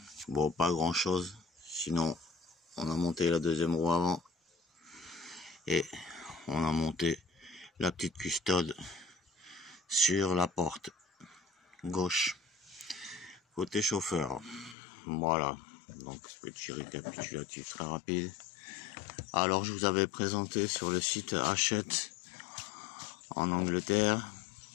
Bon, pas grand chose, sinon on a monté la deuxième roue avant et on a monté la petite custode sur la porte gauche côté chauffeur. Voilà, donc petit récapitulatif très rapide. Alors je vous avais présenté sur le site Hachette en Angleterre,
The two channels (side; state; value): right; drops out; at 14.8 s